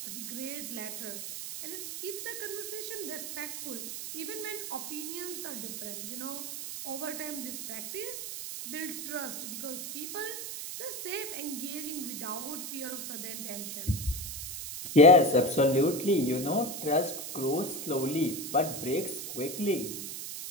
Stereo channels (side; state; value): right; noise; hiss, 6 dB below the sound